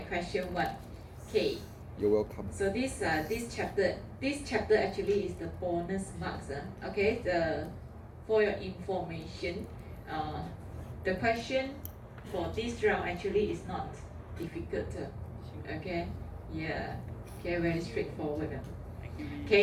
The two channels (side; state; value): both; identical; correlation 1.00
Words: question 1. Okay. You're welcome. So this chapter actually is the bonus marks. Okay. For your information, the question for this round actually is not difficult. Okay. Yeah. Okay. Very straightforward.